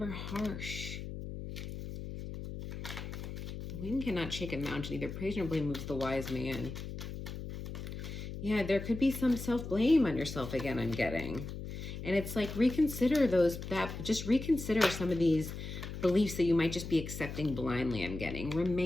harsh. The wind cannot shake a mountain. Either praise nor blame moves the wise man. Yeah, there could be some self-blame on yourself again, I'm getting. And it's like reconsider just reconsider some of these beliefs that you might just be accepting blindly, I'm getting.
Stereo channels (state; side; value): noise; left; hum, 8 dB below the sound